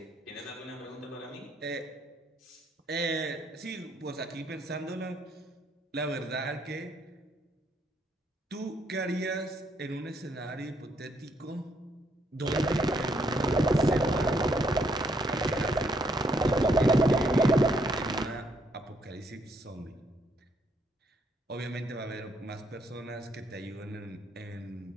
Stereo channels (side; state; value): both; normal; correlation 0.72